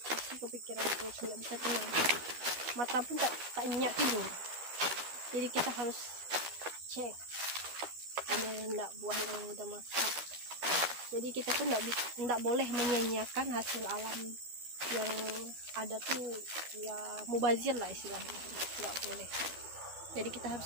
pasti kepikiran terus, nggak bisa tenang, mata pun tak nyenyak tidur. Jadi kita harus cek ada enggak buah yang udah masak. Jadi kita tuh enggak boleh menyanyiakan hasil alam yang ada tuh, ya mubazir lah istilahnya, nggak boleh. Jadi kita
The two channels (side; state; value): left; late; 12 ms